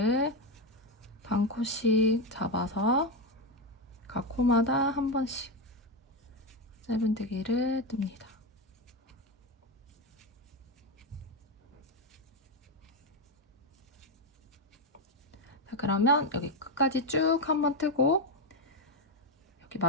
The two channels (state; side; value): normal; both; correlation 0.09